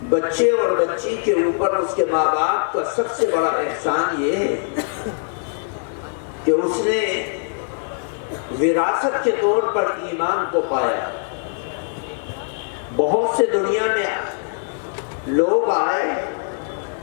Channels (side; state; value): right; silent; digital silence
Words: بچے اور بچی کے اوپر اس کے ماں باپ کا سب سے بڑا احسان یہ ہے کہ اس نے وراثت کے طور پر ایمان کو پایا. بہت سے دنیا میں لوگ آئے،